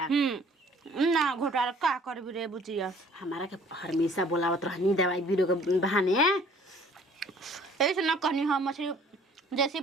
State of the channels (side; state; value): both; normal; correlation 0.55